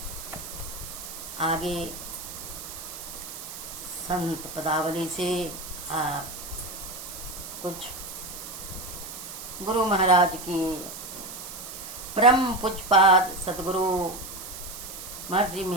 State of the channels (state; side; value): noise; right; hiss, 10 dB below the sound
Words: आगे संत पदावली से कुछ गुरु महाराज की परम पूज्यपाद सदगुरु महर्षि